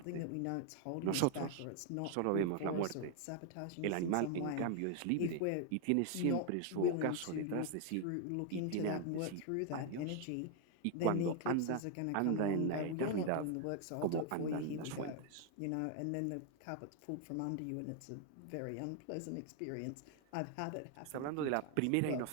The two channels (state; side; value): different; both; correlation 0.00